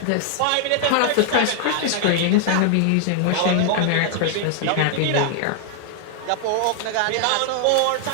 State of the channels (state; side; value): different; both; correlation 0.00